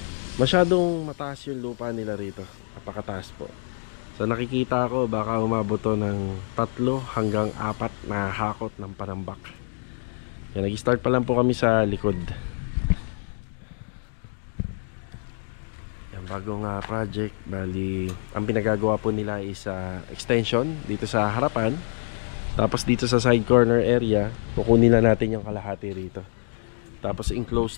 masyadong mataas yung lupa nila rito. Napakataas po. So nakikita ko baka umabot to ng 3 hanggang 4 na hakot ng panambak. Yan, nag-start pa lang po kami sa likod. Yan, bagong project. Bali, ang pinagagawa po nila is extension dito sa harapan. Tapos dito sa side corner area, kukunin na natin yung kalahati rito. Tapos enclosed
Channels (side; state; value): right; silent; digital silence